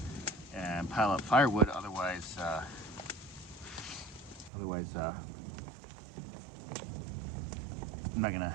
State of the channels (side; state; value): left; drops out; at 4.5 s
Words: and pile up firewood, otherwise I'm not